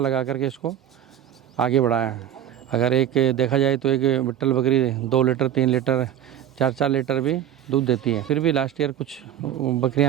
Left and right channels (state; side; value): quieter; left; 10.7 dB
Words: करके इसको आगे बढ़ाया है। अगर एक देखा जाए तो एक बिट्टल बकरी 2 लीटर 3 लीटर 4 लीटर भी दूध देती है। फिर भी लास्ट ईयर कुछ